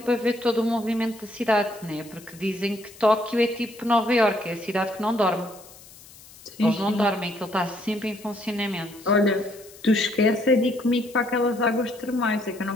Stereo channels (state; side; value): noise; left; hiss, 21 dB below the sound